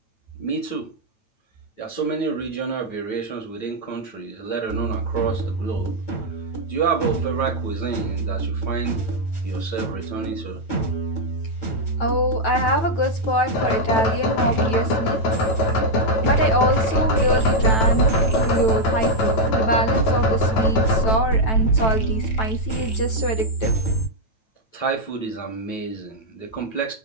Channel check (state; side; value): late; right; 9.1 ms